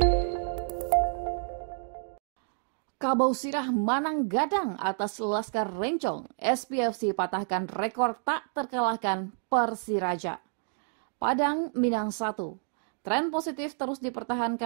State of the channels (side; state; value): left; silent; digital silence